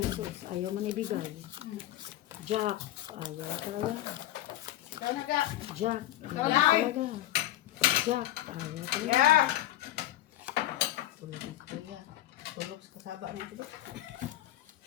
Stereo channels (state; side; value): quieter; right; 14.4 dB